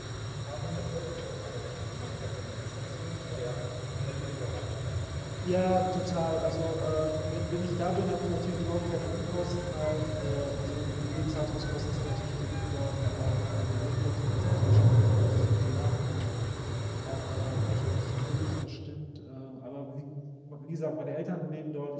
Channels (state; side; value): identical; both; correlation 1.00